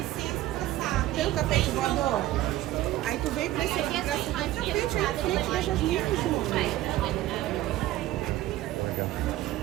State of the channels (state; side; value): quieter; left; 15.2 dB